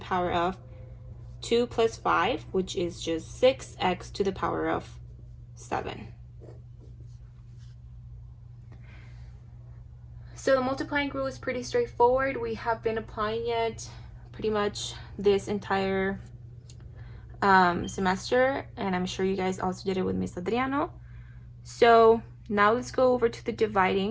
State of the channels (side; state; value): both; identical; correlation 1.00